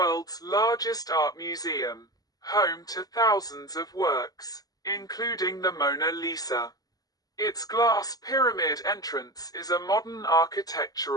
largest art museum, home to thousands of works, including the Mona Lisa. Its glass pyramid entrance is a modern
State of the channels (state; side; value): late; right; 0.18 ms